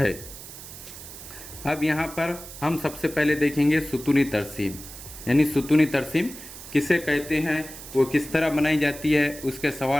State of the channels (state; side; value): noise; right; hiss, 14 dB below the sound